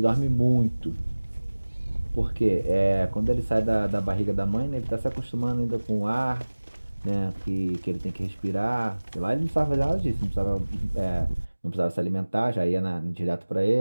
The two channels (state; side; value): inverted; both; correlation -1.00